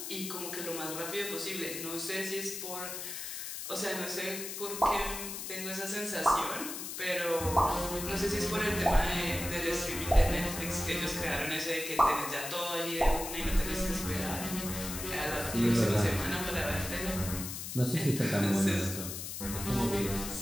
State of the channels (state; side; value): noise; left; hiss, 6 dB below the sound